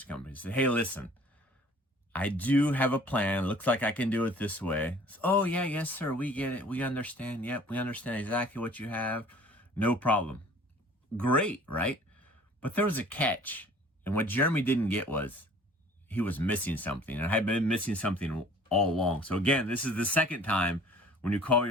company and said, hey, listen, I do have a plan. Looks like I can do it this way. So, oh, yeah, yes, sir, we get it. We understand. Yep, we understand exactly what you have. No problem. Great, right? But there was a catch. And what Jeremy didn't get was he was missing something. And I had been missing something all along. So again, this is the second time when you call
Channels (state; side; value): normal; both; correlation 0.51